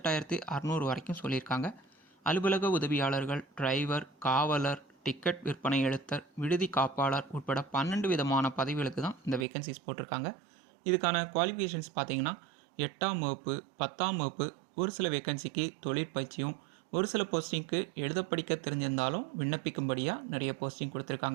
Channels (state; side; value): drops out; left; at 9.5 s